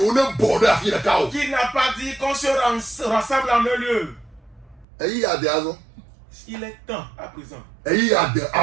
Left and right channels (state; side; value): drops out; left; at 4.9 s